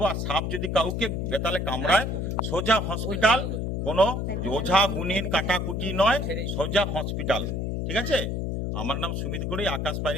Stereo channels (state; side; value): noise; left; hum, 1 dB below the sound